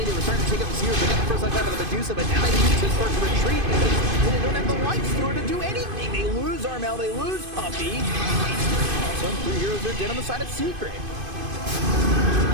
They were starting to take up the Seers. They got the first life out of the Medusa, but now they need to start to retreat because they don't have the light store to do anything. They lose Armel. They lose Puppy. Also, 3 heroes are dead on the side of Secret.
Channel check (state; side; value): late; left; 2.5 ms